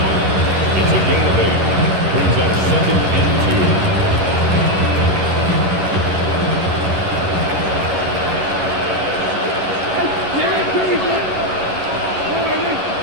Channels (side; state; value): left; late; 11 ms